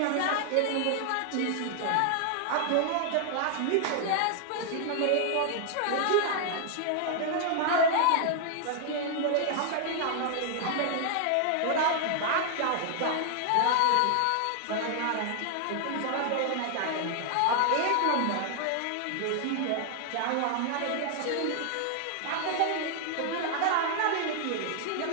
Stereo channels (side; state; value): both; different; correlation 0.00